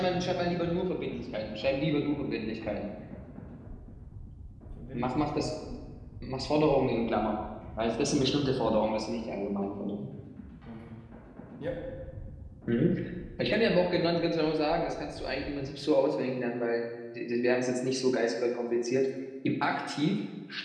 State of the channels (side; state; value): both; identical; correlation 1.00